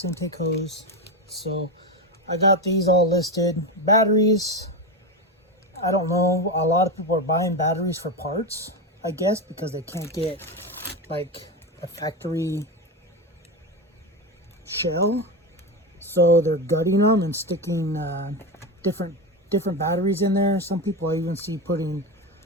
intake hose. So I got these all listed. Batteries, I don't know. A lot of people are buying batteries for parts, I guess, because they can't get like a factory shell. So they're gutting them and sticking different batteries in there. Some people I even see putting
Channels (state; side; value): normal; both; correlation 0.16